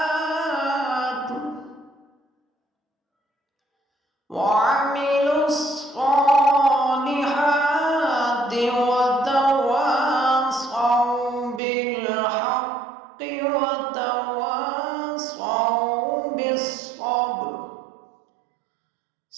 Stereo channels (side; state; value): left; drops out; at 11.6 s